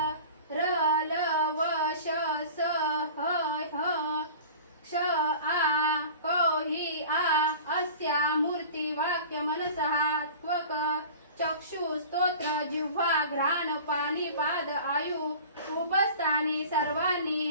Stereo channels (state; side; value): inverted; both; correlation -0.40